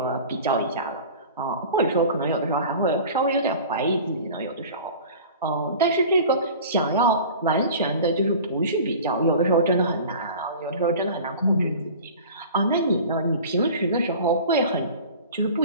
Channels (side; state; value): both; inverted; correlation -0.40